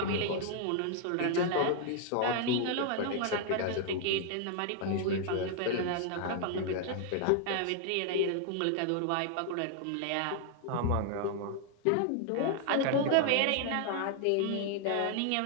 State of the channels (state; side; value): different; both; correlation 0.00